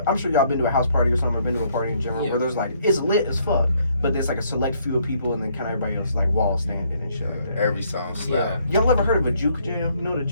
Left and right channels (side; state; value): both; inverted; correlation -0.68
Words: I'm sure y'all been to a house party or something, or been to a party in general where there's like it's lit as fuck, but there's like a select few of people and then kind of everybody else like wall standing and shit like that. Every song slap. Y'all ever heard of a juke jam? You know what a